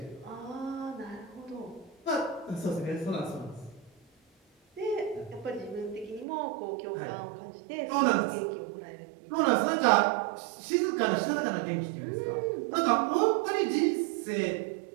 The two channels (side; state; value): left; drops out; at 6.2 s